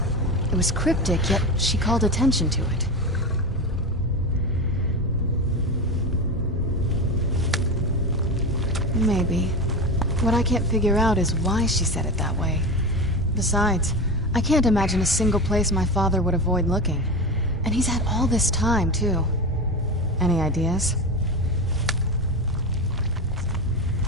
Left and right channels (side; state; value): both; normal; correlation 0.22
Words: It was cryptic, yet she called attention to it. Maybe. What I can't figure out is why she said it that way. Besides, I can't imagine a single place my father would avoid looking. And he's had all this time, too. Any ideas?